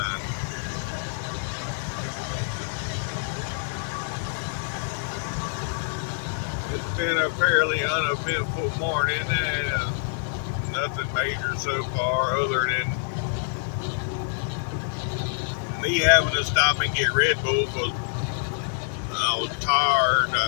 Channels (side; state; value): right; silent; digital silence